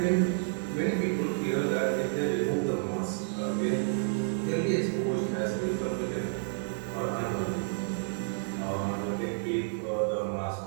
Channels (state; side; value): silent; left; digital silence